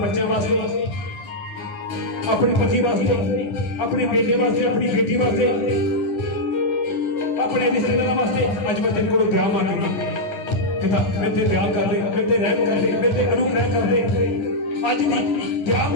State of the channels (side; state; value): right; late; 9.8 ms